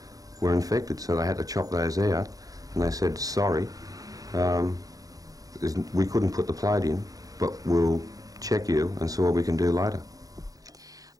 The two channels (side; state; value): left; late; 0.17 ms